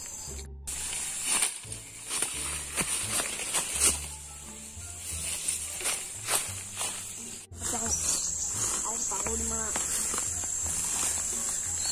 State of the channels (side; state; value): both; identical; correlation 1.00